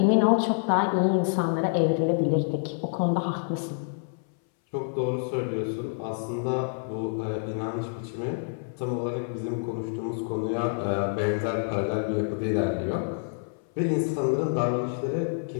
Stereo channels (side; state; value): right; silent; 60 dB below the other